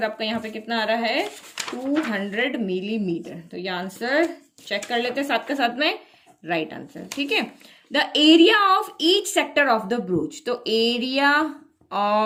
आपका यहाँ पे कितना आ रहा है, 200 मिलीमीटर। तो ये आंसर चेक कर लेते हैं साथ के साथ में, राइट आंसर। ठीक है, the area of each sector of the broach, तो एरिया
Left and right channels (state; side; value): identical; both; correlation 1.00